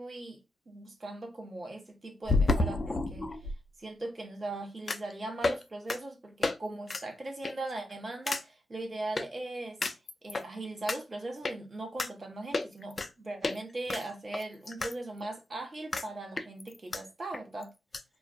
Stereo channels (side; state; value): both; normal; correlation 0.84